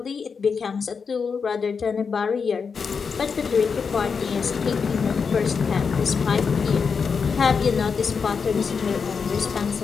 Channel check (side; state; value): right; quieter; 5.7 dB